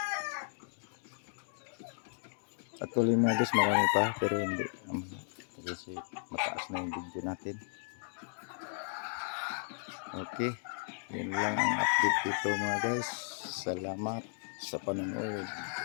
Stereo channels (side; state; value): right; silent; digital silence